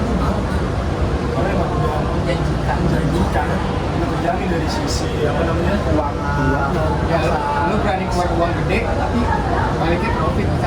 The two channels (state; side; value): identical; both; correlation 1.00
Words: mau. Karena emang udah Menjanjikan. menjanjikan, udah terjamin dari sisi apa namanya Keuangan. Ya, lu berani keluar uang gede, tapi baliknya profit